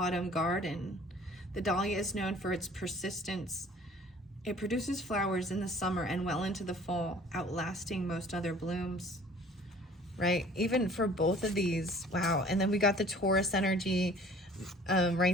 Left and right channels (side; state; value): both; normal; correlation 0.51